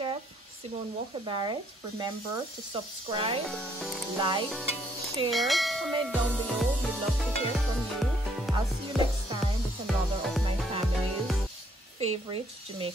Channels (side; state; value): both; normal; correlation 0.68